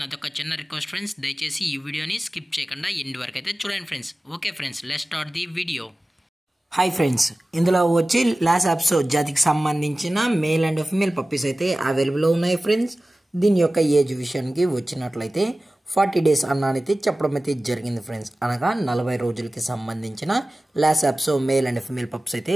నాదొక చిన్న రిక్వెస్ట్ ఫ్రెండ్స్, దయచేసి ఈ వీడియోని స్కిప్ చేయకుండా ఎండ్ వరకు అయితే చూడండి friends. Okay friends, let's start the video. Hi friends, ఇందులో వచ్చి లాస్ అప్సో జాతికి సంబంధించిన మేల్ అండ్ ఫీమేల్ పప్పీస్ అయితే అవైలబుల్లో ఉన్నాయి ఫ్రెండ్స్. దీని యొక్క ఏజ్ విషయానికి వచ్చినట్లయితే 40 days అన్నానైతే చెప్పడం అయితే జరిగింది ఫ్రెండ్స్. అనగా 40 రోజులకి సంబంధించిన Lhasa Apso male and female pups అయితే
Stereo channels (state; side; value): normal; both; correlation 0.97